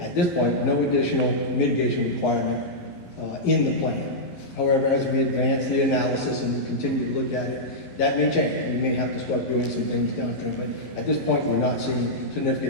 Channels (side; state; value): right; late; 11 ms